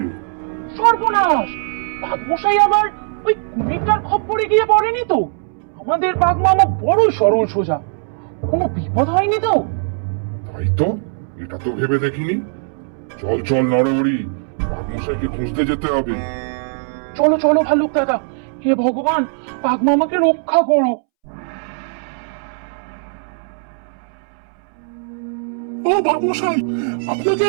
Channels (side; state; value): left; silent; 66 dB below the other